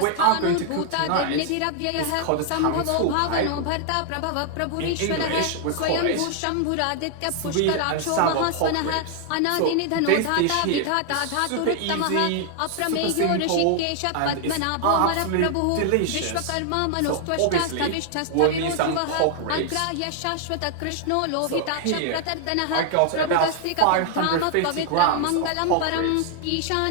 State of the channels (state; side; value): different; both; correlation 0.00